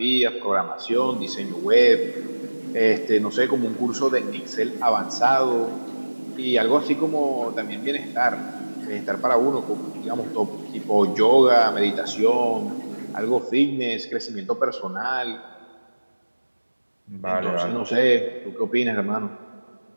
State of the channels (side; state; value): both; inverted; correlation -1.00